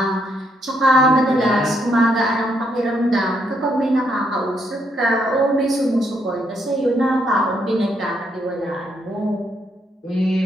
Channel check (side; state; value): both; normal; correlation 0.75